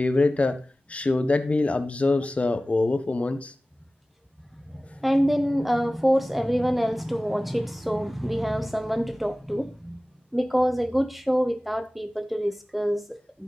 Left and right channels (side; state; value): both; normal; correlation 0.97